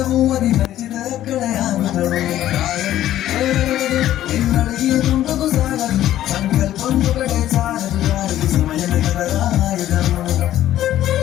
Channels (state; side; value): quieter; right; 12.9 dB